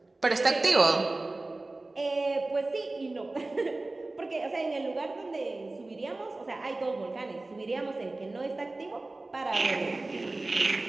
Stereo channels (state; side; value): quieter; left; 3.0 dB